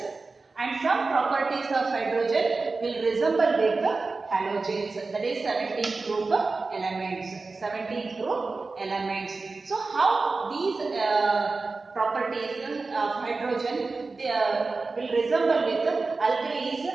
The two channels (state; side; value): quieter; left; 3.9 dB